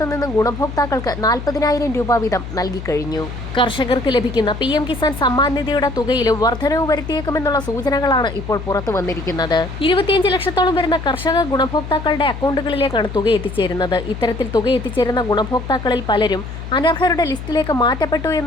നിന്നും ഗുണഭോക്താക്കൾക്ക് 40,000 രൂപ വീതം നൽകിക്കഴിഞ്ഞു. കർഷകർക്ക് ലഭിക്കുന്ന PM കിസാൻ സമ്മാൻ നിധിയുടെ തുകയിലും വർധനവ് വരുത്തിയേക്കുമെന്നുള്ള സൂചനകളാണ് ഇപ്പോൾ പുറത്തു വന്നിരിക്കുന്നത്. 25 ലക്ഷത്തോളം വരുന്ന കർഷക ഗുണഭോക്താക്കളുടെ അക്കൗണ്ടുകളിലേക്കാണ് തുക എത്തിച്ചേരുന്നത്. ഇത്തരത്തിൽ തുക എത്തിച്ചേരുന്ന ഗുണഭോക്താക്കളിൽ പലരും അനർഹരുടെ ലിസ്റ്റിലേക്ക് മാറ്റപ്പെട്ടു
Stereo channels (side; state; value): left; noise; hum, 9 dB below the sound